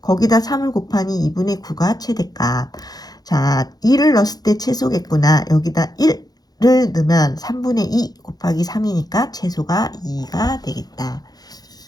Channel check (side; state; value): right; late; 0.19 ms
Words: 거기다 3을 곱하니 2분의 9가 최대값. 자, 1을 넣었을 때 최소겠구나. 여기다 1을 넣으면 3분의 2 곱하기 3이니까 최소가 2가 되겠다.